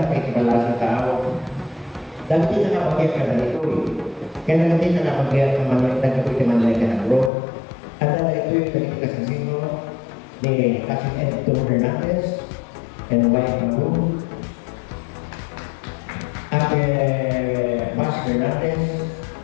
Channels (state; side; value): drops out; right; at 7.3 s